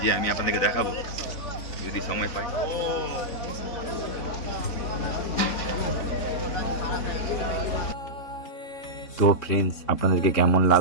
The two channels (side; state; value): right; late; 3.8 ms